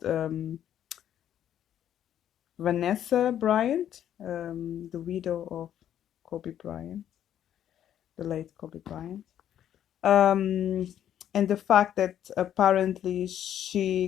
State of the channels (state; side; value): quieter; right; 10.5 dB